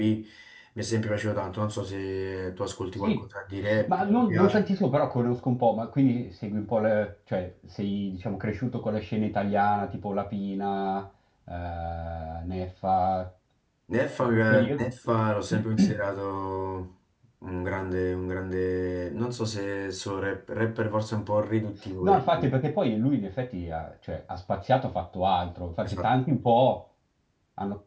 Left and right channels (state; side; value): identical; both; correlation 1.00